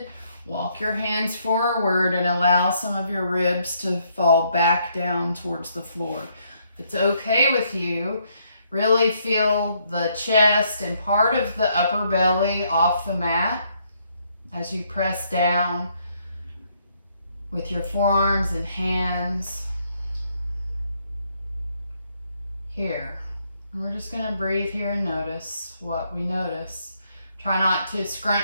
walk your hands forward and allow some of your ribs to fall back down towards the floor. If it's okay with you, really feel the chest and part of the upper belly off the mat as you press down with your forearms and hands here. And we're just going to breathe here and notice what we notice. Try not to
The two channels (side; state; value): both; inverted; correlation -0.72